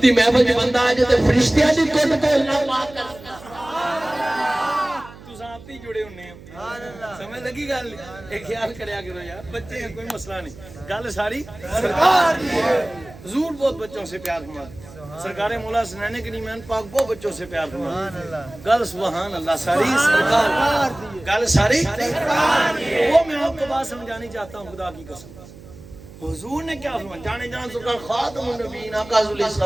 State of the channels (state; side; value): noise; right; hum, 19 dB below the sound